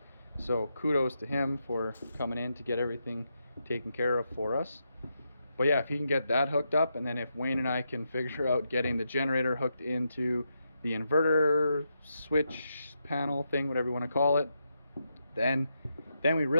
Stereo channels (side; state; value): both; inverted; correlation -0.83